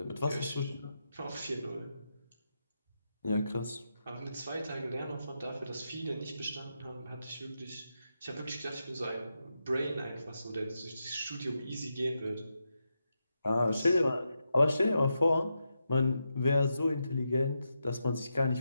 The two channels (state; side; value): inverted; both; correlation -0.86